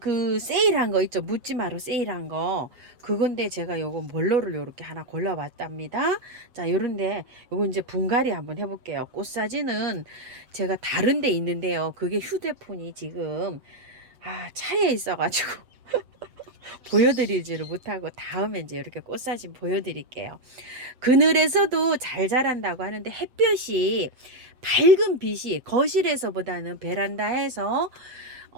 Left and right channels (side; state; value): left; late; 7.8 ms